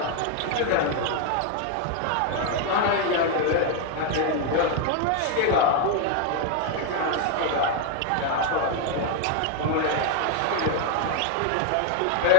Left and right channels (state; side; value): different; both; correlation 0.01